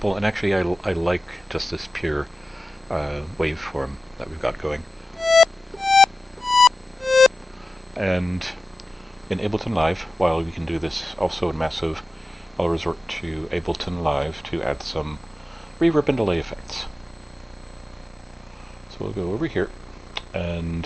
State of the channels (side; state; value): both; normal; correlation 0.95